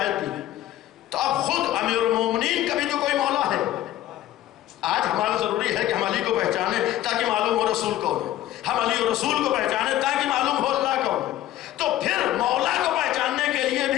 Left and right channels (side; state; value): right; quieter; 13.7 dB